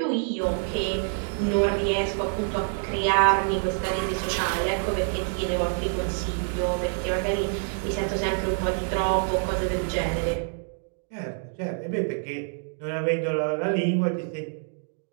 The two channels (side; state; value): left; silent; 60 dB below the other